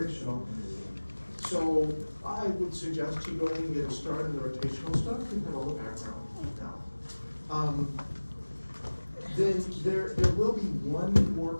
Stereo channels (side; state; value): both; inverted; correlation -1.00